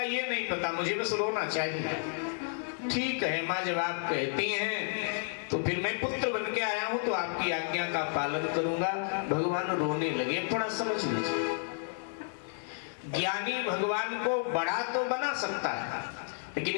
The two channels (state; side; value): silent; right; 57 dB below the other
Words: ये नहीं पता, मुझे बस रोना चाहिए। ठीक है माँ, जब आप कहती हैं तो फिर मैं पुत्र बन के आया हूं तो आपकी आज्ञा का पालन करूंगा। भगवान रोने लगे। थोड़ा समझ लीजिए, ज्ञानी भगवान को बड़ा तो बना सकता है,